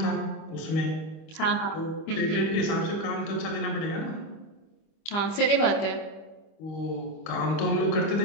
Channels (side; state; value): right; late; 25 ms